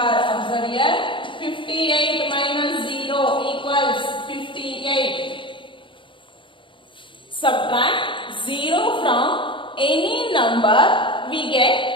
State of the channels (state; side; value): late; right; 0.24 ms